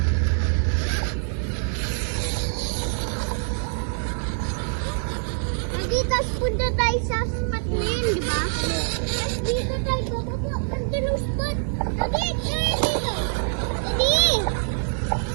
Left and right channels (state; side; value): silent; left; 62 dB below the other